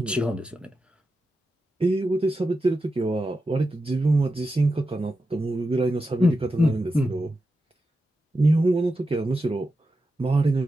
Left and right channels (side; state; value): both; normal; correlation 0.90